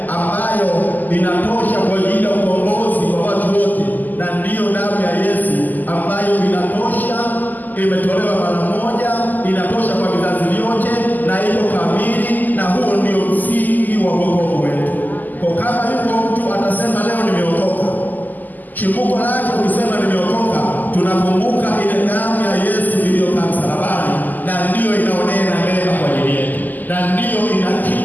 ambayo inatosha kwa ajili ya ukombozi wa watu wote, na ndiyo damu ya Yesu ambayo inatosha, imetolewa mara moja, inatosha kwa vizazi vyote na iko kamili, na huo ndio msingi wa wokovu wetu. Kwa kama yuko mtu atasema leo nimeokoka, chimbuko lake ukisema nimeokoka, tunakumbuka ile damu ya Yesu iliyokaa msalabani, na ndiyo inaonena mema kwa ajili yetu, na ndiyo ina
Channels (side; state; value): right; late; 0.084 ms